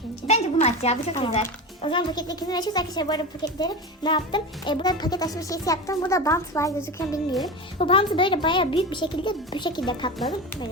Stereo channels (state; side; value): normal; both; correlation 0.25